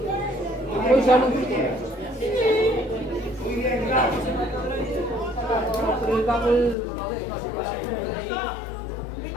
Muy salud. Pero el papel lo dejo así para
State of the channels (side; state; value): right; drops out; at 6.8 s